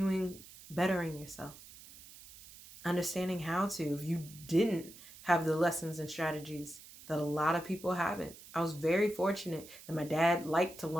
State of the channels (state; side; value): noise; right; hiss, 18 dB below the sound